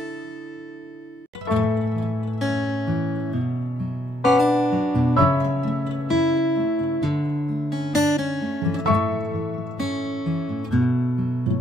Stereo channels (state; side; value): normal; both; correlation 0.74